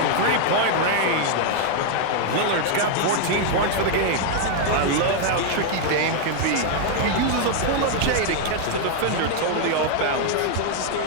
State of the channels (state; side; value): different; both; correlation 0.00